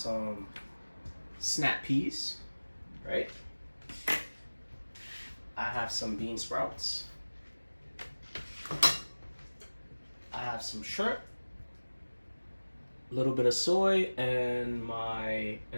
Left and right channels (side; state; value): both; inverted; correlation -1.00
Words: snap peas, right? I have some bean sprouts. I have some shrimp, a little bit of soy, and